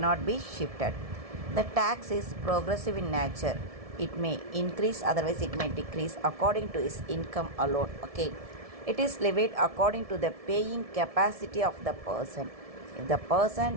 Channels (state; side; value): late; left; 1.7 ms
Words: be shifted. The tax is progressive in nature. It may increase, otherwise it may decrease according to his income alone. Okay. It is levied according to the paying capacity of the person. If the